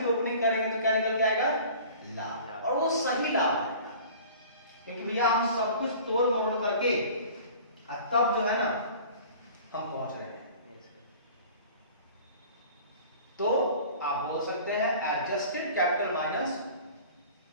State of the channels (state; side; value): inverted; both; correlation -0.44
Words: ओपनिंग करेंगे तो क्या निकल जाएगा, लाभ, और वो सही लाभ आएगा, क्योंकि भैया हम सब कुछ तोड़ मोड़ करके तब जो है ना हम पहुंच रहे हैं। तो आप बोल सकते हैं adjusted capital minus